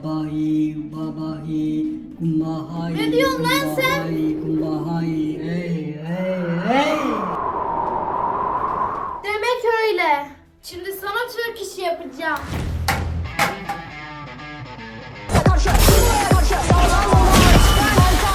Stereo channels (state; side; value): identical; both; correlation 1.00